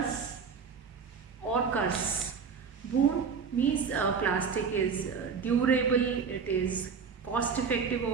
or curse. Boon means plastic is durable, it is cost effective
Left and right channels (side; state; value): left; quieter; 5.9 dB